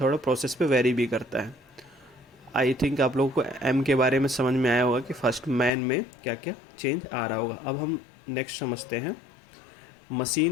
प्रोसेस पे वेरी भी करता है। आई थिंक आप लोगों को एम के बारे में समझ में आया होगा कि फर्स्ट मैन में क्या क्या चेंज आ रहा होगा। अब हम नेक्स्ट समझते हैं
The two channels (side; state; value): right; drops out; at 5.7 s